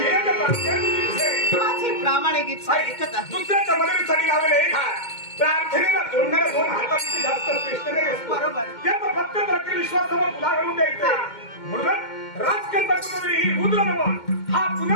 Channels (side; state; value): right; late; 2.1 ms